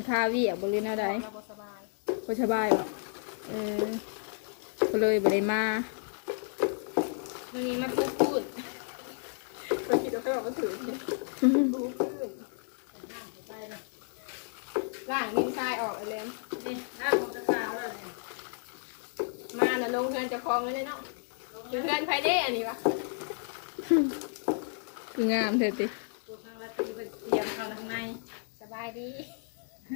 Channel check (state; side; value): silent; right; 56 dB below the other